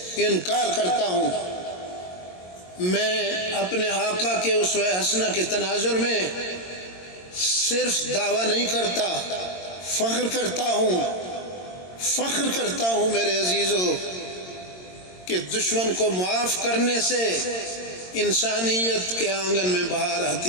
انکار کرتا ہوں۔ میں اپنے آقا کے اسوہ حسنہ کے تناظر میں صرف دعویٰ نہیں کرتا، فخر کرتا ہوں میرے عزیزو کہ دشمن کو معاف کرنے سے انسانیت کے آنگن میں بہار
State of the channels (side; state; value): right; late; 22 ms